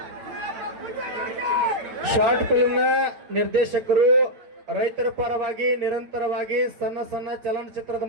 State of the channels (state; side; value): late; left; 9.0 ms